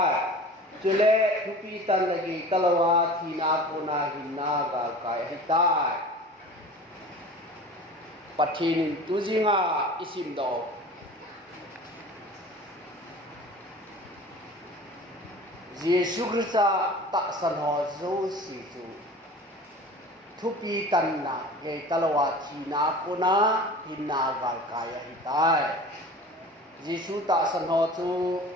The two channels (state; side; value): normal; both; correlation 0.39